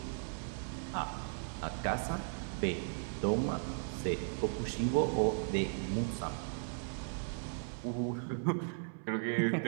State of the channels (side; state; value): left; silent; 53 dB below the other